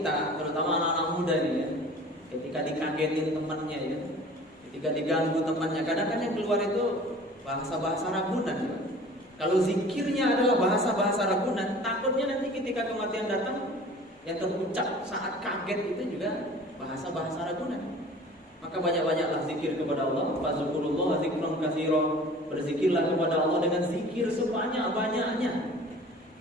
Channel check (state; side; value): normal; both; correlation 0.45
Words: terutama anak-anak muda ini ya, ketika dikagetin temannya ya, ketika diganggu temannya, kadang-kadang yang keluar itu bahasa-bahasa ragunan ya. Kalau zikirnya adalah bahasa-bahasa ragunan, takutnya nanti ketika kematian datang, yang terucap saat kaget itu juga bahasa-bahasa ragunan. Maka banyak-banyaklah zikir kepada Allah. Fazkurullah zikran katsira. Berzikirlah kepada Allah dengan zikir sebanyak-banyaknya.